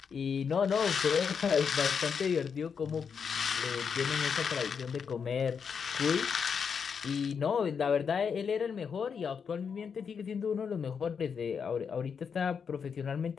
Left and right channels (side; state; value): right; quieter; 6.4 dB